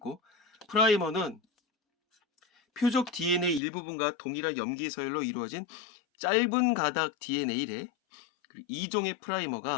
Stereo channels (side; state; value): right; drops out; at 3.6 s